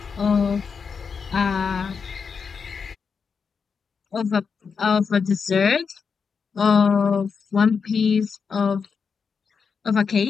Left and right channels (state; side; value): quieter; right; 5.8 dB